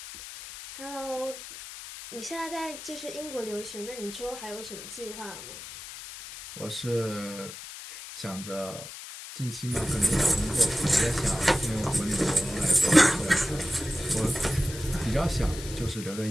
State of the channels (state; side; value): noise; left; hiss, 12 dB below the sound